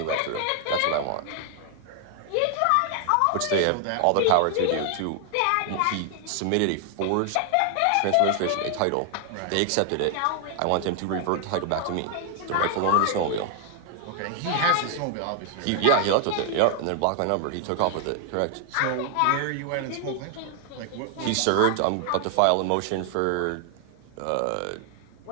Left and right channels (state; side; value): different; both; correlation 0.00